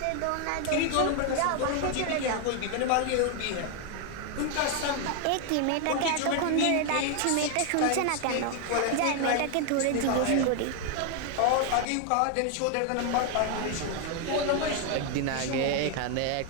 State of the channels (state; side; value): different; both; correlation 0.00